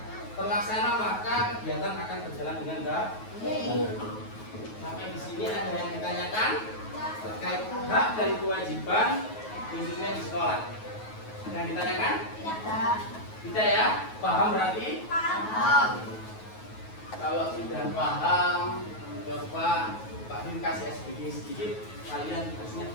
terlaksana, maka kegiatan akan berjalan dengan baik. Sampai di sini ada yang ditanyakan terkait hak dan kewajiban khususnya di sekolah. Yang ditanyakan? Tidak ya? Paham berarti? Paham. Kalau sudah paham, coba Pak Bim kasih SBG sedikit, kalian tugasnya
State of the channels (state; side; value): late; right; 9.3 ms